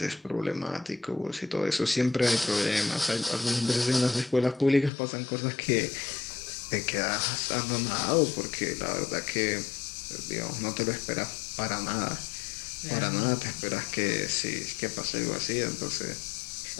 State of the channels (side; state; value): right; drops out; at 4.9 s